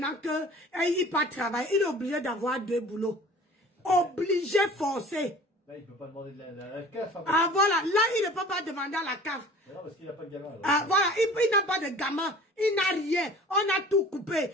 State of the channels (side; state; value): both; normal; correlation 0.45